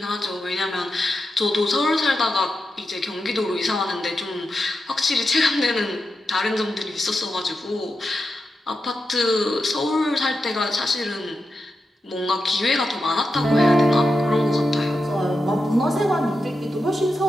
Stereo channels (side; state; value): both; normal; correlation 0.88